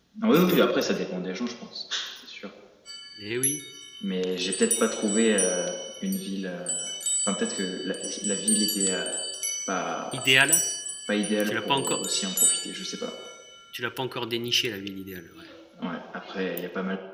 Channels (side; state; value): both; identical; correlation 1.00